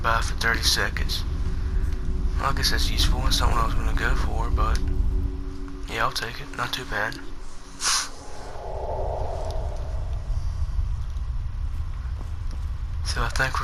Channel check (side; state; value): both; identical; correlation 1.00